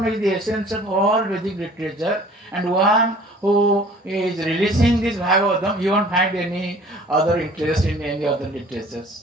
is the essence of all Vedic literature, and one who is releasing this Bhagavatam, you won't find any other interest in any other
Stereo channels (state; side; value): normal; both; correlation 0.50